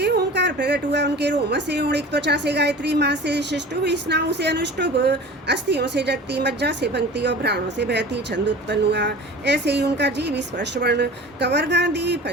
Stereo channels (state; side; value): normal; both; correlation 0.38